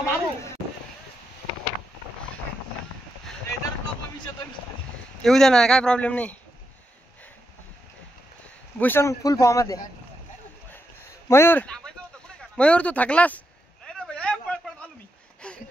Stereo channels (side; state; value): both; normal; correlation 0.83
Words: येऊ दे ना. काय प्रॉब्लेम नाही. भूषण फुल फॉर्म मध्ये. मयूर तू थकलास.